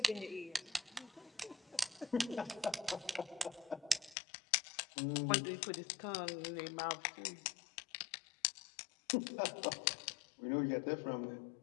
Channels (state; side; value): drops out; right; at 4.2 s